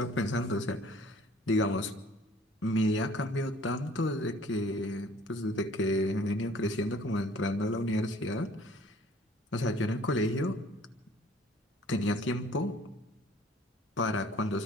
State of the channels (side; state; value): both; normal; correlation 0.54